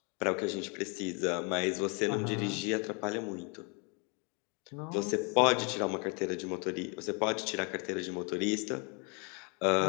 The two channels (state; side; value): quieter; right; 34.2 dB